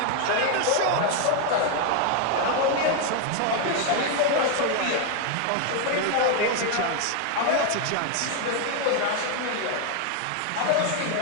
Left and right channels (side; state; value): both; different; correlation 0.01